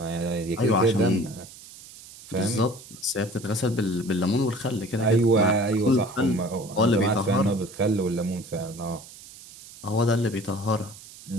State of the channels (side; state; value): right; noise; hiss, 18 dB below the sound